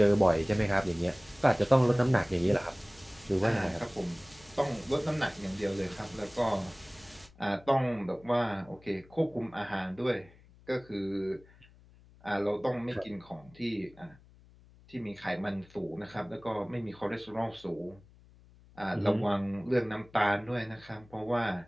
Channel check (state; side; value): noise; left; hum, 25 dB below the sound